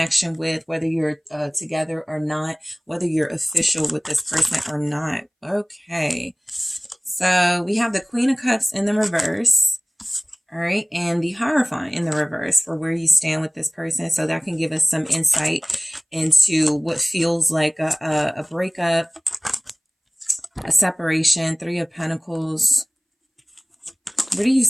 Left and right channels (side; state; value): both; identical; correlation 1.00